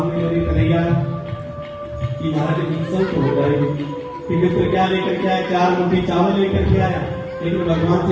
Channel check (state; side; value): identical; both; correlation 1.00